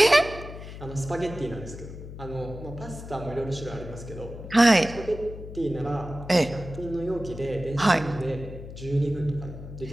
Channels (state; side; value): noise; left; hum, 12 dB below the sound